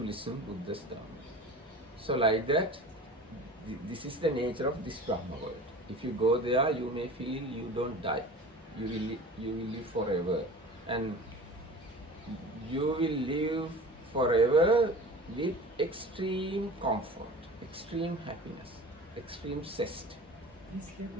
Buddha's Dhamma. So like that, this is the nature of this Brahma world. If you go there, you may feel you don't die. You will live forever, and you will live forever with extreme comfort, extreme happiness, extreme zest. This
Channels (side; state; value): both; normal; correlation 0.38